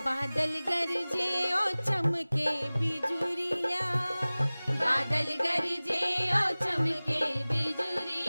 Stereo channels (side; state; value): both; inverted; correlation -0.99